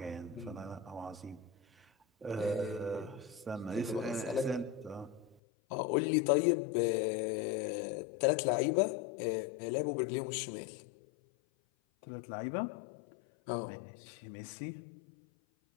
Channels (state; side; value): drops out; right; at 5.4 s